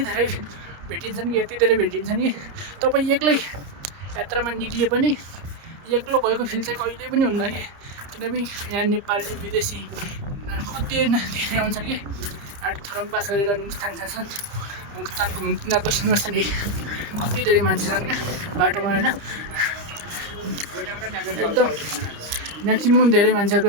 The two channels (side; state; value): left; late; 30 ms